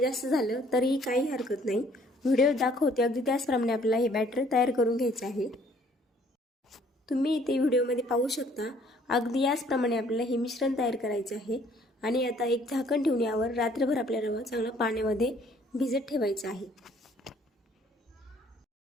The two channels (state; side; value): normal; both; correlation 0.60